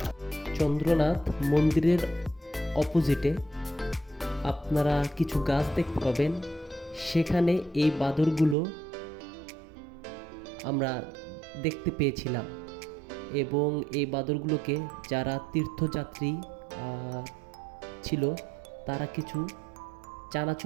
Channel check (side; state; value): left; drops out; at 8.6 s